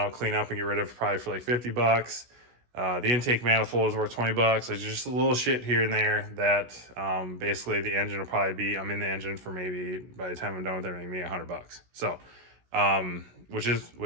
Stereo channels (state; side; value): late; left; 16 ms